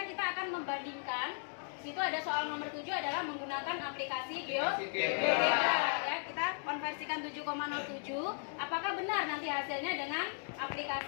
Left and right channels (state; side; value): silent; right; 54 dB below the other